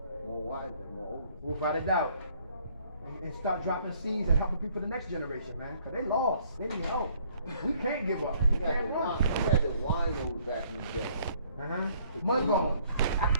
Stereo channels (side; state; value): both; inverted; correlation -0.62